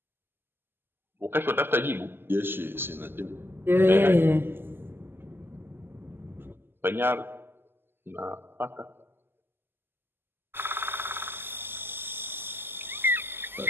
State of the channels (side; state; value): left; late; 0.10 ms